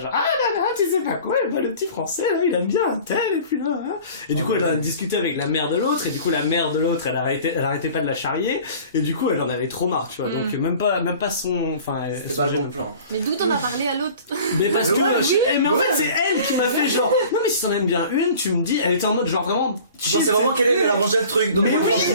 ah là là, tu sais pas quoi, le petit français, là, il aime bien un tel, et puis là, hein. Et du coup, elle a discuté avec la mère de l'autre, et du coup, la mère de l'autre, elle arrêtait pas de la charrier, et du coup, elle en avait trop marre, tu vois, donc même pas son, enfin, c'était pas le bon plan. Mais d'où t'en as parlé à l'autre? Mais parce que, mais en fait, c'est elle qui m'a fait genre, non mais si t'en aimes bien une, tu me dis, elle était en mode genre vraiment, tu pensais vraiment qu'elle allait ranger le truc, donc moi je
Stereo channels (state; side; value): inverted; both; correlation -0.45